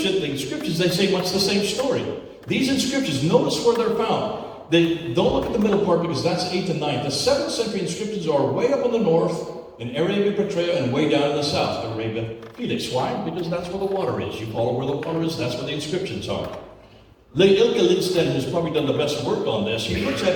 they say much the same story. These inscriptions, notice where they're found. Don't look at the middle part because that's 8th and 9th. The 7th century inscriptions are way up in the north, in Arabia Petraea, and way down in the south, Arabia Felix. Why? Because that's where the water is. You follow where the water is, that's where the inscriptions are. Ilke Lindsten, who's probably done the best work on this, he looks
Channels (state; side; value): identical; both; correlation 1.00